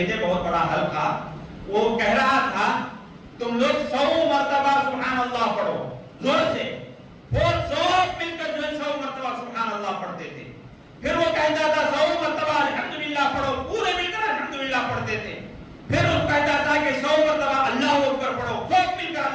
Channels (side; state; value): both; identical; correlation 1.00